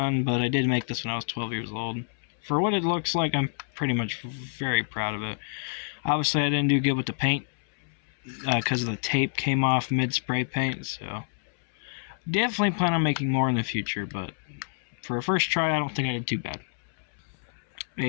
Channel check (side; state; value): right; silent; 60 dB below the other